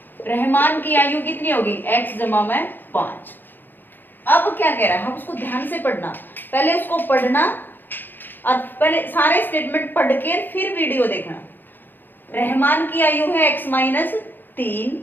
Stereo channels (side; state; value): right; late; 0.093 ms